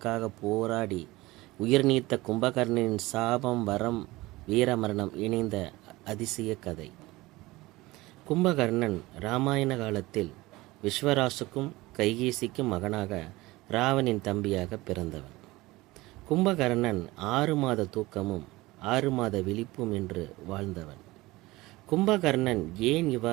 போராடி உயிர் நீத்த கும்பகர்ணனின் சாபம், வரம், வீரமரணம் இணைந்த அதிசய கதை. கும்பகர்ணன் இராமாயண காலத்தில் விஸ்வராசுக்கும் கைகேசிக்கும் மகனாக ராவனின் தம்பியாக பிறந்தவன். கும்பகர்ணன் 6 மாத தூக்கமும் 6 மாத விழிப்பும் என்று வாழ்ந்தவன். கும்பகர்ணன் ஏன்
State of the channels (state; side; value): quieter; left; 20.1 dB